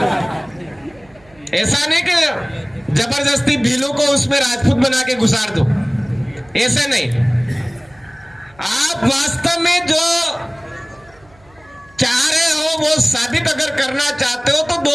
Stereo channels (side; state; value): right; noise; hum, 29 dB below the sound